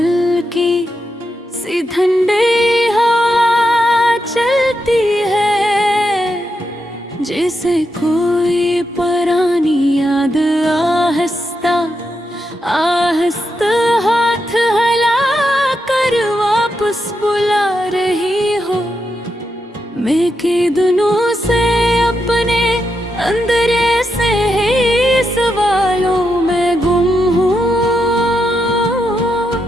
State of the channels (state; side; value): normal; both; correlation 0.84